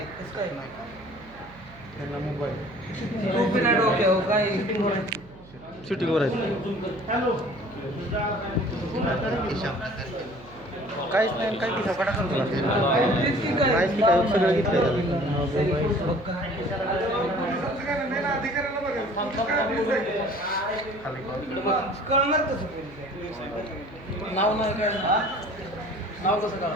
कसं काय नाही? त्यांना मोबाईल टोपी नाही डोक्यावर, काय शूटिंगवर आहे. काहीच नाही, काही किसा पटा करतो काहीच नाही, काय सगळं घेतलं कळणार कसं? नाव नाही काय, नाव कसं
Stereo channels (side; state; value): right; noise; hum, 21 dB below the sound